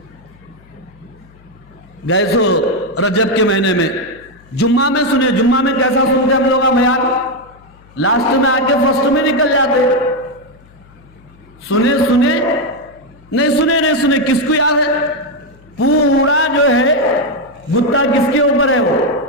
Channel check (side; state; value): left; noise; hum, 27 dB below the sound